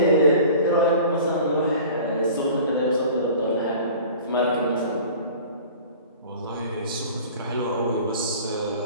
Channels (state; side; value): inverted; both; correlation -0.43